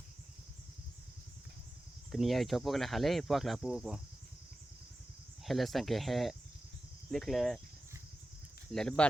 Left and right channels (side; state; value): both; normal; correlation 0.94